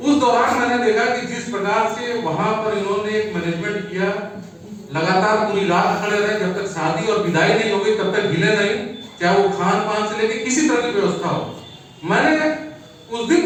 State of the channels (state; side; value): identical; both; correlation 1.00